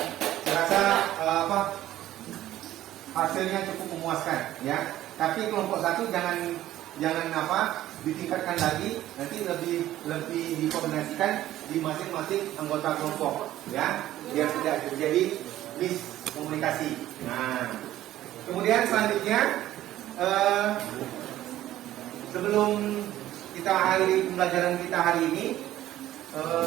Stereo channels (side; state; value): left; quieter; 13.8 dB